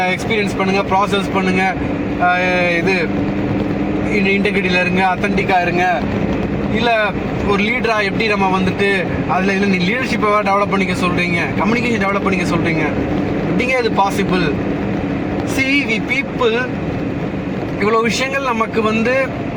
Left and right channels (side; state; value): both; identical; correlation 1.00